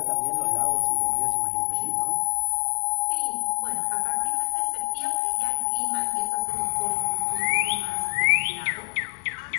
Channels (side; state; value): right; silent; 58 dB below the other